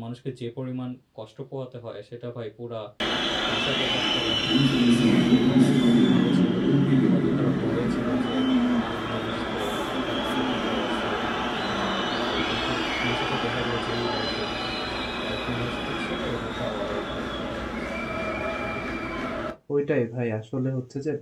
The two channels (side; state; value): both; identical; correlation 1.00